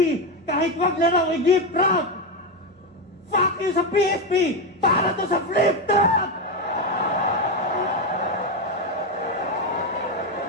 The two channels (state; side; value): normal; both; correlation 0.10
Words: Kahit wag na raw i-gift wrap! Fuck you sa PSP! Para to sa flip top!